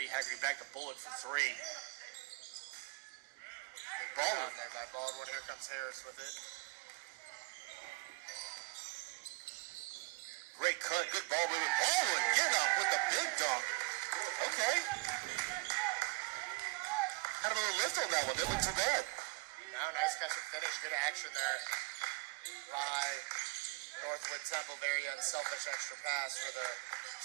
Haggerty back to Bullock for three. Big Baldwin. There by Baldwin. Here comes Harris with it. Great cut. Good ball movement. Baldwin getting up with the big dunk. Okay. Had a little lift on that one. Didn't look too bad. Now, nice catch and finish. Good action there by Northwood Temple. Very unselfish extra pass for the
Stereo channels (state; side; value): quieter; left; 25.2 dB